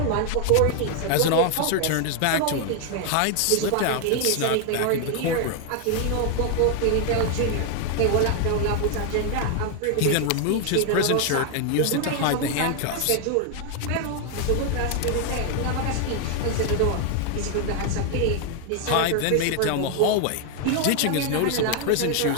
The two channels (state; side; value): different; both; correlation 0.01